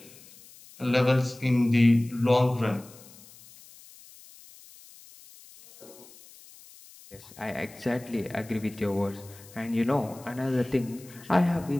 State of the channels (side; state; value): left; noise; hiss, 22 dB below the sound